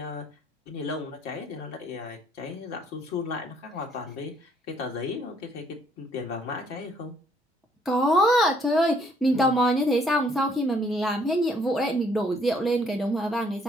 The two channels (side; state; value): both; normal; correlation 0.65